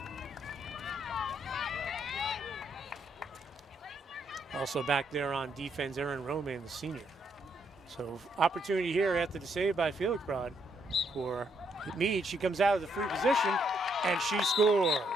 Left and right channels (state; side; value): normal; both; correlation 0.74